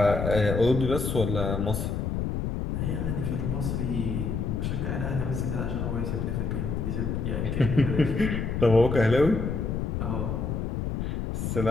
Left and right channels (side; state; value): left; noise; rumble, 1 dB below the sound